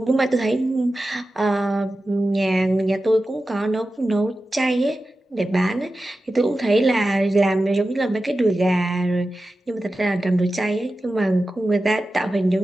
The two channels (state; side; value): normal; both; correlation 0.93